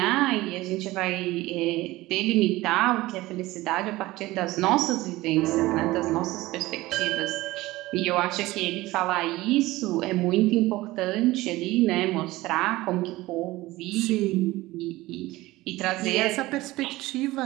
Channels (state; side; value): quieter; left; 18.6 dB